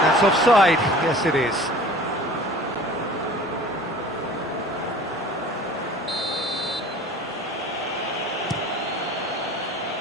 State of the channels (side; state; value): both; normal; correlation 0.44